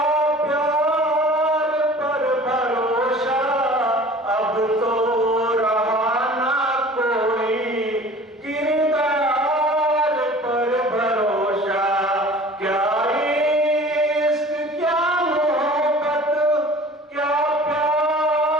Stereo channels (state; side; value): normal; both; correlation 0.44